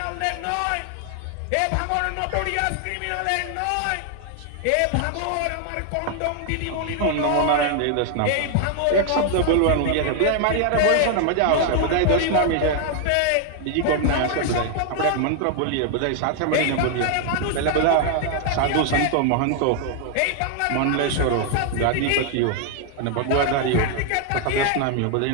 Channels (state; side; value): different; both; correlation 0.00